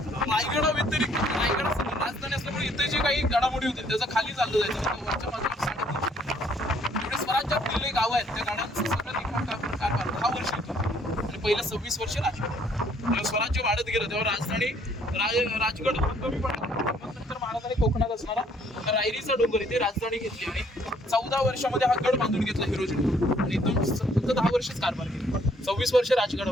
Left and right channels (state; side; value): normal; both; correlation 0.64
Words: रायगडा व्यतिरिक्त रायगड राजधानी असल्यामुळे इथे जे काही घडामोडी होते त्याचं खाली चाललं जायचं. वरच्या बाजूला स्वराज्यात दिलेले गाव आहेत, त्या गाड्यांचं सगळं लिखाण कारभार 10 वर्ष होतो आणि पहिलं 26 वर्ष राजगड. स्वराज्य वाढत गेलं तेव्हा राजधानी राजगड कमी पडला. मग नंतर महाराजांनी कोकणात असणारा रायरीचा डोंगर इथे राजधानी घेतली आणि 14 वर्षामध्ये हा गड बांधून घेतला हिरोजी. आणि इथून फक्त 10 वर्षच कारभार केला. 26 वर्ष